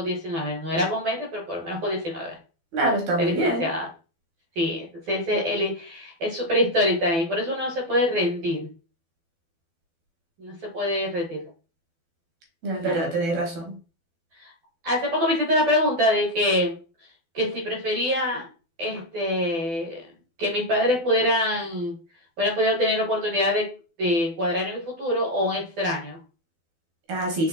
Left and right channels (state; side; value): late; left; 12 ms